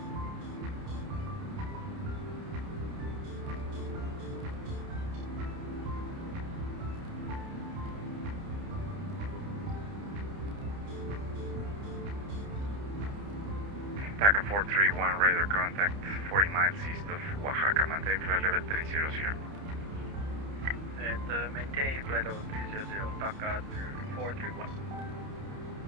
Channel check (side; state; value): left; late; 30 ms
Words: TACA 431, radar contact 40 miles east of Oaxaca, maintain flight level 300. And maintain flight level 300, TACA 431.